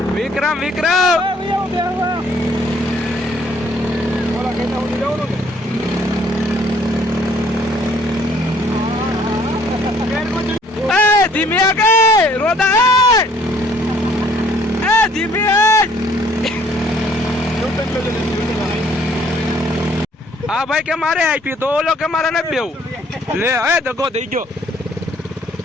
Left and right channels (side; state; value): both; normal; correlation 0.61